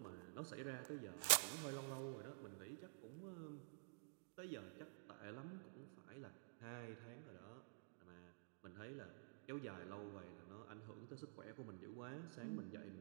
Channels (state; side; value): silent; left; digital silence